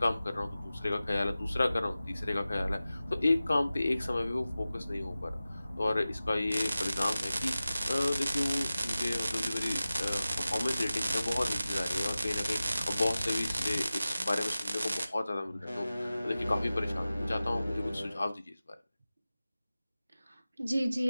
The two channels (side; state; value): both; inverted; correlation -0.96